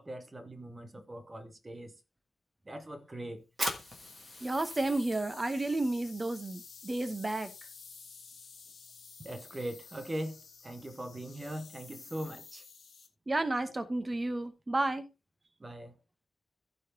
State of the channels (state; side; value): normal; both; correlation 0.96